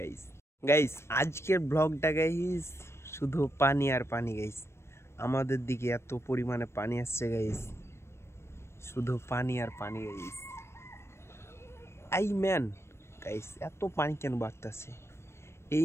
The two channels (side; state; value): right; late; 0.13 ms